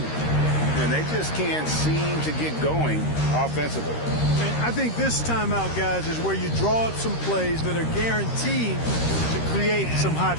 And they just can't seem to get going offensively. And I think this timeout, guys, is where you draw up some plays that are guaranteed to create some high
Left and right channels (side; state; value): right; late; 13 ms